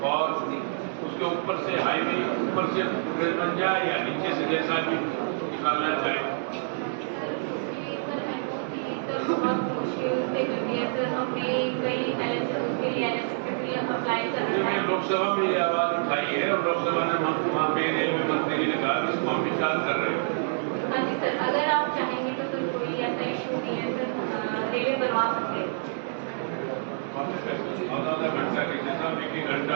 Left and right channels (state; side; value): silent; left; digital silence